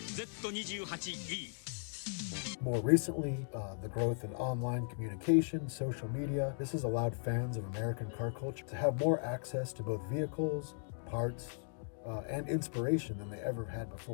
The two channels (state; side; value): silent; right; digital silence